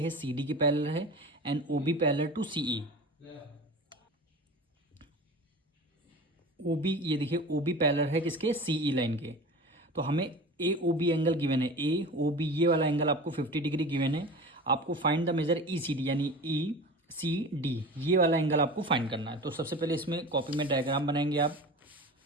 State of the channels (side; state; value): both; normal; correlation 0.34